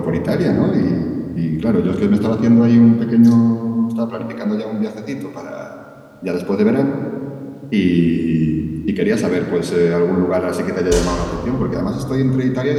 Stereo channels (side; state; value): both; identical; correlation 1.00